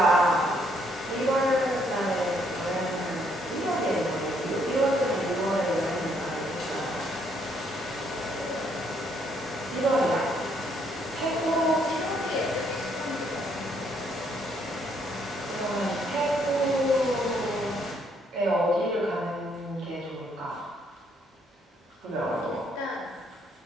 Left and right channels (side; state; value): both; normal; correlation 0.70